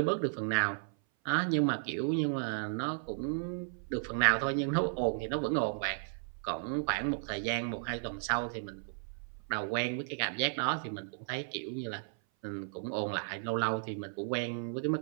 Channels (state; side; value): silent; left; 55 dB below the other